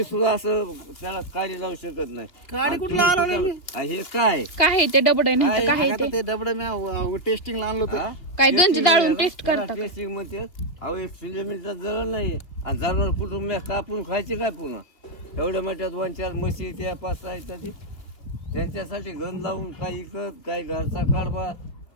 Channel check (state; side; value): late; right; 2.7 ms